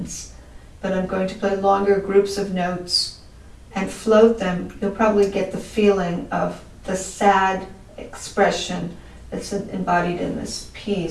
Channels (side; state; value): both; identical; correlation 1.00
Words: but I'm going to play longer groups of notes and float them, you'll probably get the feeling of the sad expression that's embodied in this